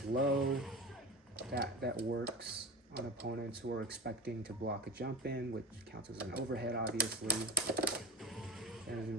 low, that works on opponents who are expecting to block a jump in, which counts as an overhead, obviously. It doesn't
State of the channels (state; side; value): normal; both; correlation 0.29